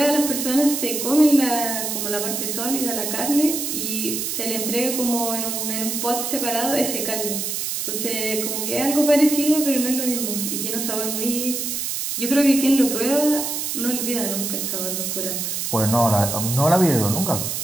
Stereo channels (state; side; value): noise; right; hiss, 2 dB below the sound